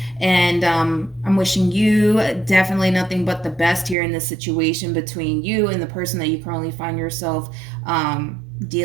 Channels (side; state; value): left; drops out; at 4.0 s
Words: And I'm wishing you definitely nothing but the best here in this situation between you and the person that you currently find yourself